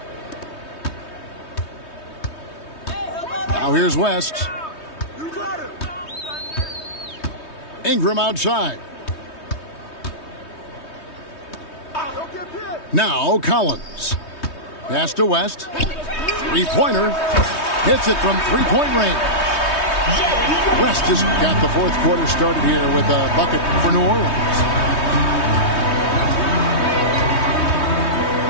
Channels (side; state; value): right; late; 3.2 ms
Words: Now here's West. Ingram outside. Now Collins. Pass to West. Three-pointer. Hits it from three-point range. West has got the fourth quarter started here with a bucket for New Orleans.